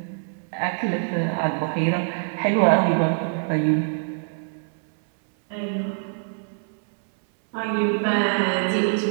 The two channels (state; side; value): silent; left; 62 dB below the other